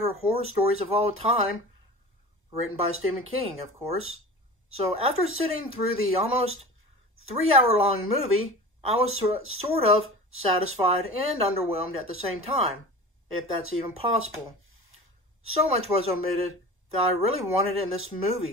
horror stories of all time, written by Stephen King, of course. So after sitting through the almost 3-hour-long movie, I was sort of satisfied and underwhelmed at the same time, if that's even possible. So much was omitted that I really wanted in this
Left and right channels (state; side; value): normal; both; correlation 0.36